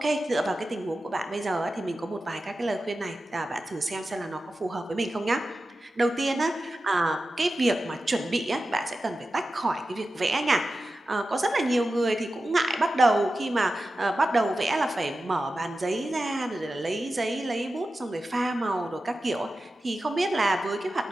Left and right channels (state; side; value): normal; both; correlation 0.93